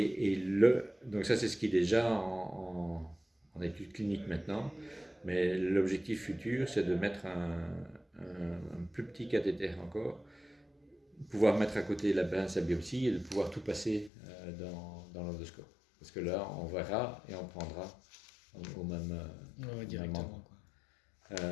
Donc ça, c'est ce qui est déjà en étude clinique maintenant, mais l'objectif futur, c'est de mettre un plus petit cathéter encore, pouvoir mettre à côté la pince à biopsie et de pouvoir tout passer dans l'endoscope. Parce que là, on verra et on prendra au même moment.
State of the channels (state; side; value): drops out; right; at 14.1 s